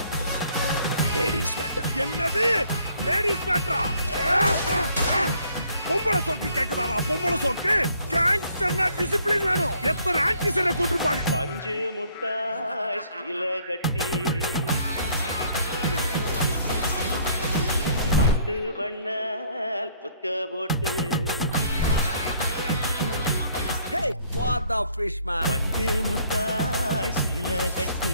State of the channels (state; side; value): inverted; both; correlation -0.63